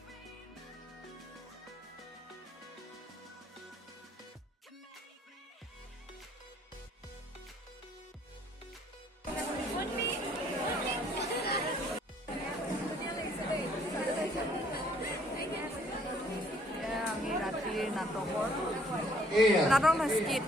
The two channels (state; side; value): normal; both; correlation 0.62